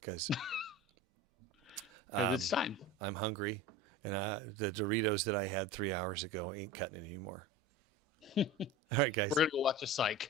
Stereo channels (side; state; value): both; normal; correlation 0.32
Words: It's time. I'm hungry, and the Doritos that I had 3 hours ago ain't cutting it anymore. All right, guys. We're gonna go watch a psych